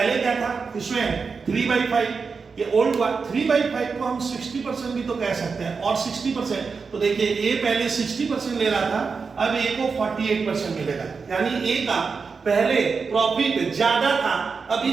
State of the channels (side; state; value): left; quieter; 5.1 dB